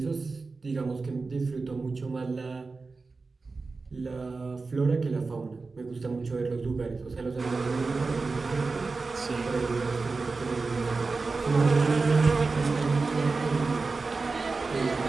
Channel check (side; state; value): left; quieter; 4.0 dB